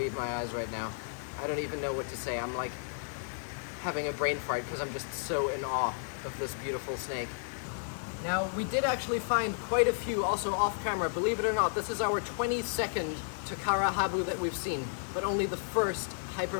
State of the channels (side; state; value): right; silent; digital silence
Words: my eyes right now. I don't even know what to say. I'm like having a brain fart because I'm just so in awe of this beautiful snake. Now, we did actually find quite a few also off camera. Believe it or not, this is our 22nd Takara Habu that we've seen, but only the first